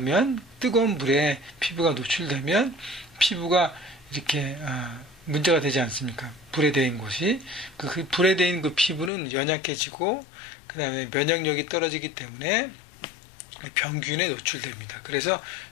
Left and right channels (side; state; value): right; drops out; at 9.1 s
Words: 뜨거운 물에 피부가 노출되면 피부가 이렇게 문제가 되지 않습니까? 불에 데인 곳이 그 불에 데인 그 피부는 연약해지고 그 다음에 면역력이 떨어지기 때문에 병균에 노출됩니다. 그래서